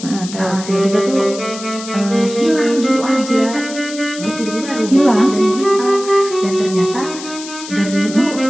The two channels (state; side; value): noise; left; hiss, 12 dB below the sound